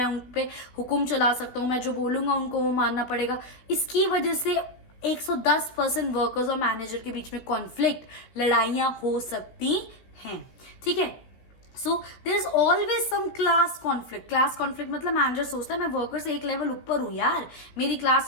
उन पे हुक्म चला सकता हूँ, मैं जो बोलूंगा उनको वो मानना पड़ेगा। इसकी वजह से 110% वर्कर्स और मैनेजर के बीच में कॉन्फ्लिक्ट, लड़ाइयां हो सकती हैं, ठीक है। So there is always some class conflict. Class conflict मतलब मैनेजर सोचता है मैं वर्कर से एक लेवल ऊपर हूं यार, मेरी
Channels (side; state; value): right; late; 16 ms